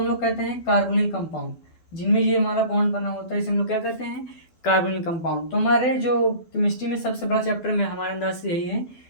लोग कहते हैं कार्बोनिल कंपाउंड, जिनमें ये हमारा बॉन्ड बना होता है, इसे हम लोग क्या कहते हैं, कार्बोनिल कंपाउंड। तो हमारे जो केमिस्ट्री में सबसे बड़ा चैप्टर में हमारे अंदाज से यही है,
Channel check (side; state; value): right; late; 12 ms